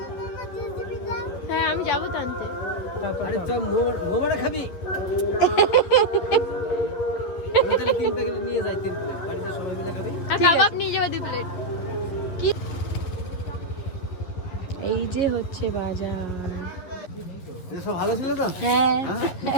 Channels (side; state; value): right; late; 11 ms